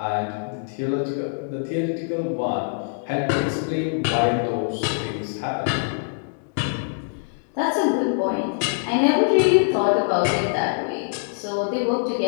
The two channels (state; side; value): silent; right; digital silence